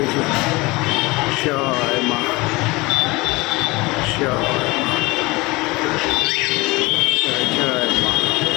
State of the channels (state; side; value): quieter; right; 23.2 dB